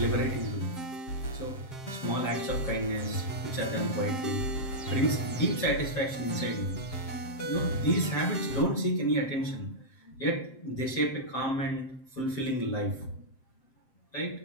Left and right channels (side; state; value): right; late; 7.6 ms